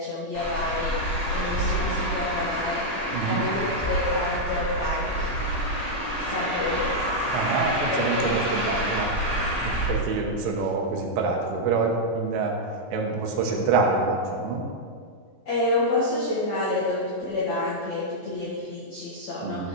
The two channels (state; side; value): normal; both; correlation -0.03